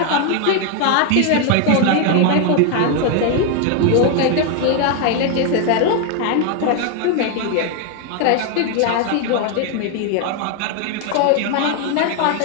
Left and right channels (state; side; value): different; both; correlation 0.01